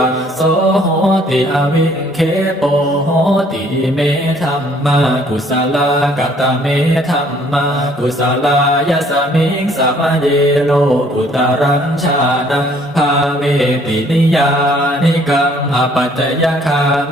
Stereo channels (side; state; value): both; normal; correlation 0.60